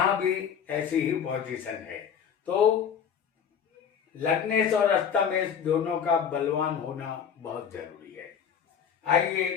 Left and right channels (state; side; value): quieter; right; 7.7 dB